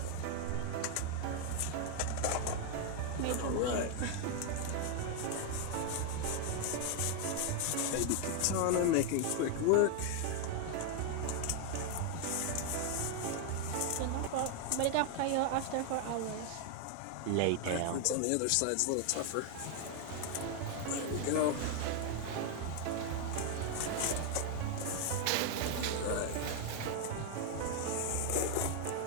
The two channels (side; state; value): both; different; correlation 0.00